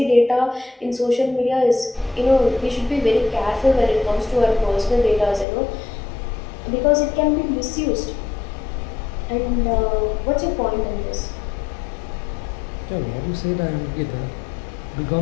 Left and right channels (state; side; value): drops out; right; at 5.5 s